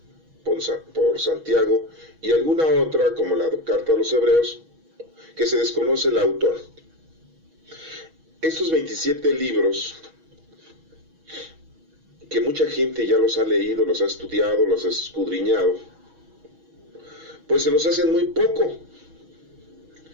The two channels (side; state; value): left; late; 6.2 ms